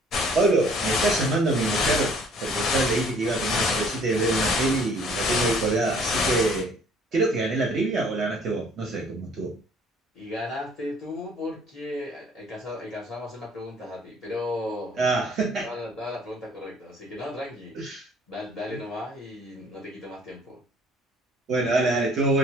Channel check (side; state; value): both; normal; correlation 0.57